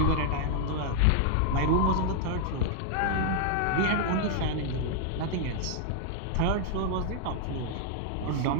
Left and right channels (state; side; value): different; both; correlation -0.01